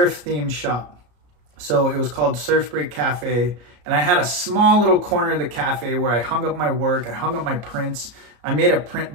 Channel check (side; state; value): left; late; 34 ms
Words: themed shop. So it was called Surf Break Cafe. And I had a small little corner of the cafe where I hung up my work, I hung up my prints. I made a print